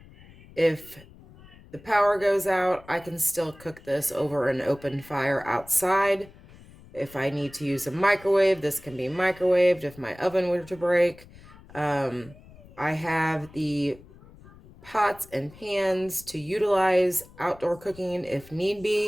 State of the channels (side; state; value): left; noise; rumble, 22 dB below the sound